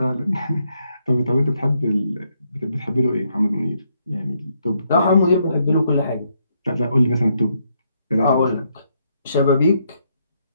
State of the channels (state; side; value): inverted; both; correlation -0.76